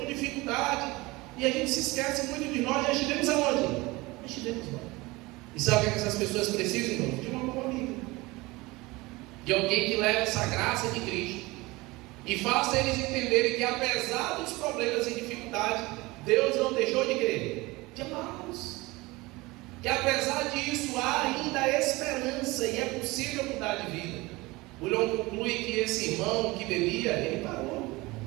dificuldade, e a gente se esquece muito de nós. Já estivemos aonde? Já estivemos lá. E sabe o que essas pessoas precisam, irmãos? De uma boa amiga, de alguém que leve essa graça de Cristo e faça eles entenderem que, apesar dos problemas e dificuldades, Deus não deixou de querer, de amá-los. Que apesar disso há ainda esperança e é possível mudar de vida. O Leão conclui que esse irmão que bebia, ele parou.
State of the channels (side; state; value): left; quieter; 22.0 dB